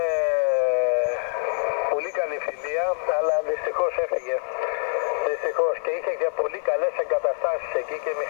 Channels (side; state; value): right; silent; digital silence